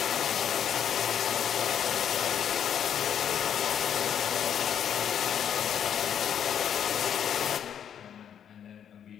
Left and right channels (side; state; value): right; quieter; 8.9 dB